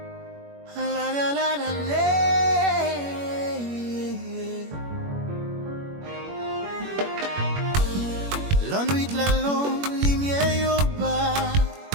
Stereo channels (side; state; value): left; late; 21 ms